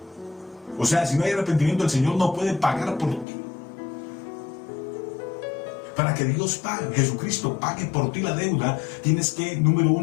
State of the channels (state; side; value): drops out; right; at 3.2 s